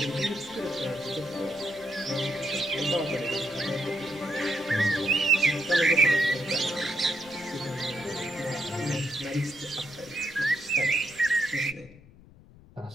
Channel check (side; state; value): left; noise; rumble, 23 dB below the sound